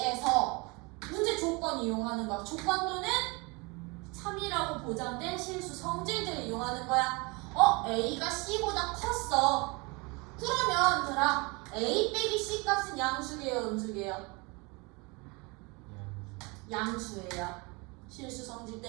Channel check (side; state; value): left; quieter; 27.7 dB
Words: 문제 조건 이용하는 거야. 조건 또는 3이라고 보장된 실수 성질들을 이용하는 거야. A가 C보다 컸어. 그러면 들아 A 빼기 C 값은 양수계요, 음수계요? 양수예요. 실수 성질